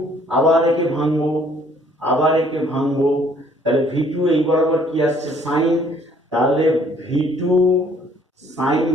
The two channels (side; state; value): both; normal; correlation 0.61